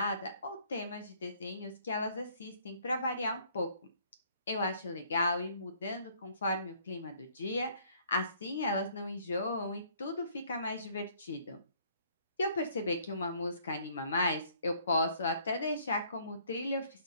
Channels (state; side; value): inverted; both; correlation -0.62